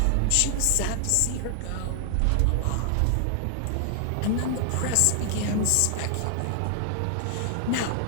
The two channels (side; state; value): both; different; correlation 0.00